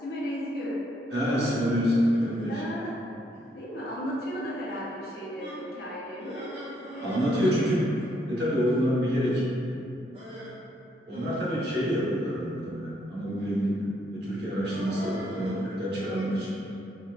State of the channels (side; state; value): both; normal; correlation 0.72